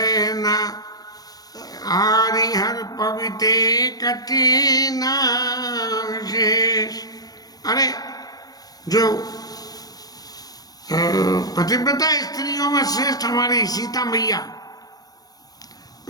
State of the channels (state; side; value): late; right; 0.19 ms